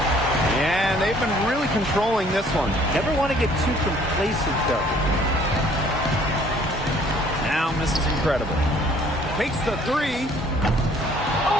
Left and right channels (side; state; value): both; normal; correlation 0.58